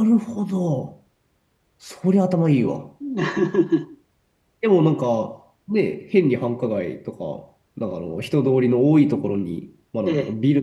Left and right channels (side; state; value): both; identical; correlation 1.00